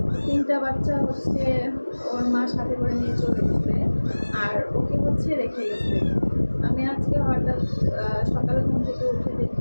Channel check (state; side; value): inverted; both; correlation -1.00